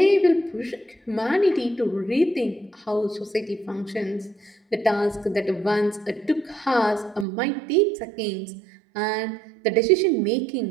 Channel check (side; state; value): left; drops out; at 7.2 s